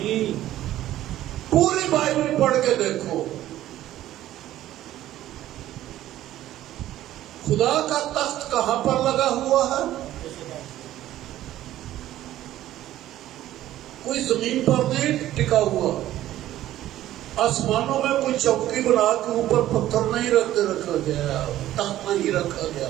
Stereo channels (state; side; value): quieter; left; 13.7 dB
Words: پوری بائبل پڑھ کے دیکھو، خدا کا تخت کہاں پر لگا ہوا ہے؟ کوئی زمین پر نہیں ٹکا ہوا، آسمانوں میں کوئی چوکی بنا کے اوپر پتھر نہیں رکھا گیا، تخت نہیں رکھا گیا۔